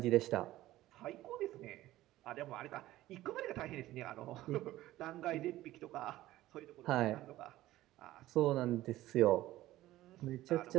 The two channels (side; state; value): left; quieter; 15.7 dB